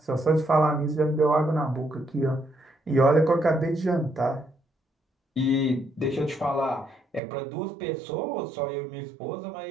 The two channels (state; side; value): drops out; left; at 7.2 s